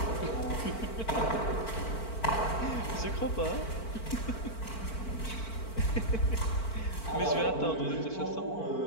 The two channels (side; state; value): right; late; 4.5 ms